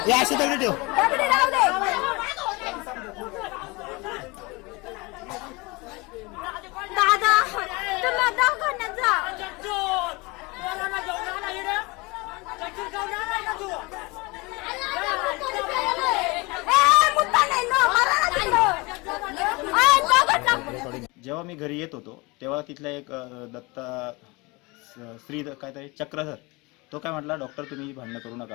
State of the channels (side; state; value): right; quieter; 25.4 dB